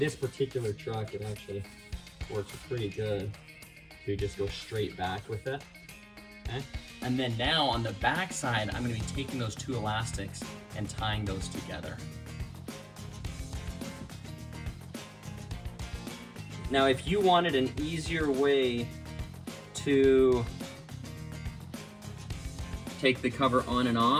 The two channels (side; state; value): both; identical; correlation 1.00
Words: particular truck, it actually works pretty good to just go straight back with it. Okay, and then now on the back side, I'm gonna be taking those two elastics and tying those together. Now, if you wanted an easier way to take the cover on and